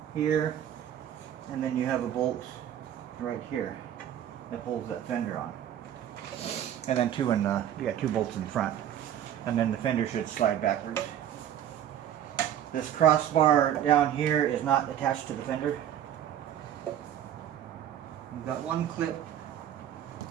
here, and then you have a bolt right here that holds that fender on. And then you got 2 bolts in front, and then the fender should slide backwards. This crossbar down here is not attached to the fender. We've got one clip.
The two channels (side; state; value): left; quieter; 10.7 dB